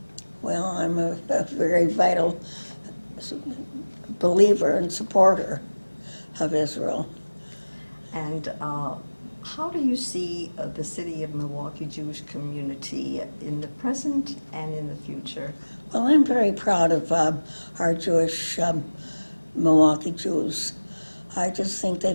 Well, I'm a very vital believer and supporter of Israel. And how do you see the city of Milwaukee Jewish community in the present and in the future? Well, I'm very proud of our Jewish Milwaukee Jews. I just think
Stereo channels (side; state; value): both; inverted; correlation -1.00